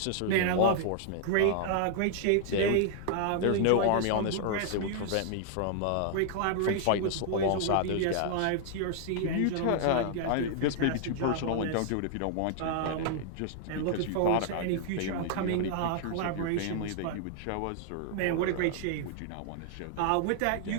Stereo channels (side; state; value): both; different; correlation -0.01